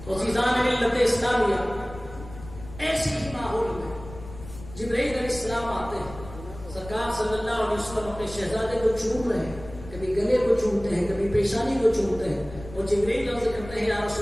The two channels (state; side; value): noise; left; rumble, 15 dB below the sound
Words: تو عزیزان ملت اسلامیہ، ایسی ہی ماحول میں جبرائیل علیہ السلام آتے ہیں. سرکار صلی اللہ علیہ وسلم اپنے شہزادے کو چوم رہے ہیں، کبھی گلے کو چومتے ہیں، کبھی پیشانی کو چومتے ہیں. اور جبرائیل عرض کرتے ہیں یا